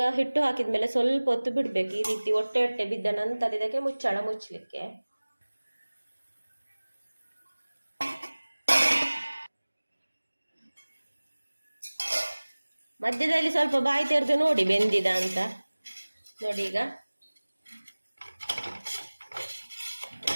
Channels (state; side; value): inverted; both; correlation -1.00